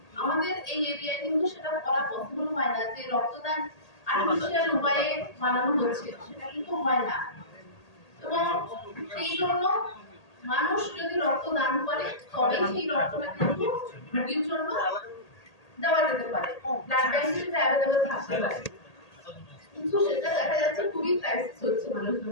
আমাদের এই এরিয়ায় কিন্তু সেটা করা পসিবল হয় না, যে রক্তদান আর্টিফিশিয়াল উপায়ে বানানো হচ্ছে সেটা কিন্তু হয় না। এবং সেই জন্য মানুষ যদি রক্ত দান করে তবে সেই রক্তটা কিন্তু রোগীর জন্য দেওয়া যেতে পারে, ব্লাড ব্যাংকে সেটা অ্যাভেলেবল থাকতে পারে। কিন্তু সেটা দেখা যাচ্ছে খুবই ক্রাইসিস হচ্ছে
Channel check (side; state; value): right; late; 1.8 ms